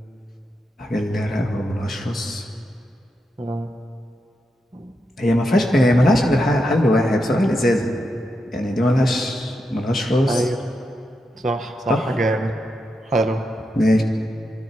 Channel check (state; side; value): normal; both; correlation 0.85